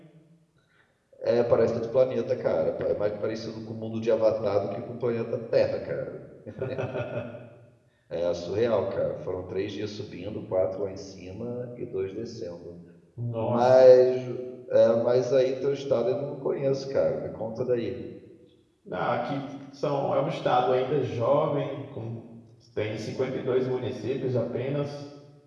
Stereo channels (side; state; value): both; identical; correlation 1.00